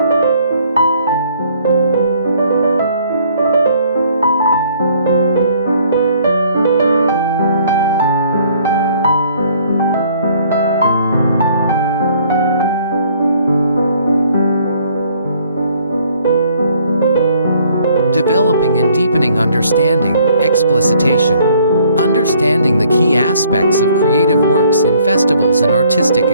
Developing and deepening understanding, explicitation. Understanding the key aspects of creative works in festivals and artistic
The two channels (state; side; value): inverted; both; correlation -0.62